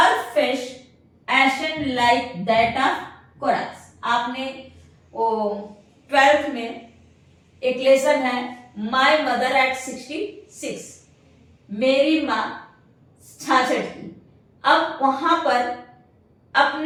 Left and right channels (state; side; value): identical; both; correlation 1.00